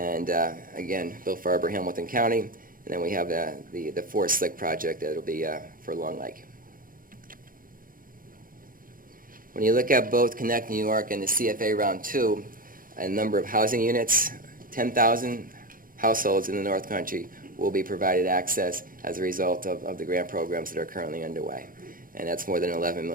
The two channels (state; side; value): late; left; 0.41 ms